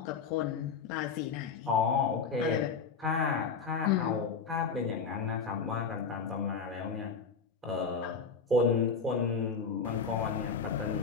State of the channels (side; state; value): right; quieter; 5.4 dB